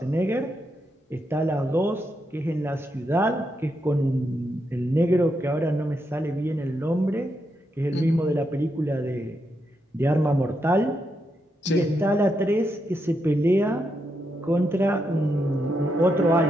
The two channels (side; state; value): both; normal; correlation 0.82